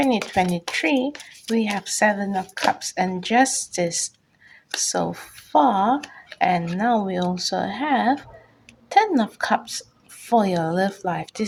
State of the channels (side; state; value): both; identical; correlation 1.00